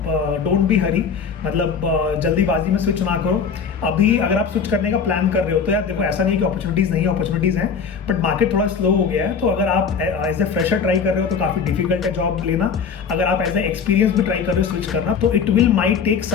डोंट बी हरी, मतलब जल्दीबाजी में स्विच ना करो। अभी अगर आप स्विच करने का प्लान कर रहे हो तो यार देखो, ऐसा नहीं कि अपॉर्चुनिटीज़ नहीं है, अपॉर्चुनिटीज़ हैं, बट मार्केट थोड़ा स्लो हो गया है। तो अगर आप एज ए फ्रेशर ट्राई कर रहे हो तो काफ़ी डिफिकल्ट है जॉब लेना। अगर आप एज ए एक्सपीरियंस भी ट्राई कर रहे हो स्विच करना, तो it will might take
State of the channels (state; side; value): quieter; right; 6.1 dB